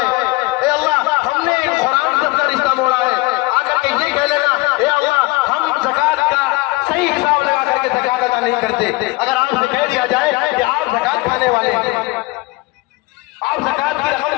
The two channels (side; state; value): right; quieter; 22.2 dB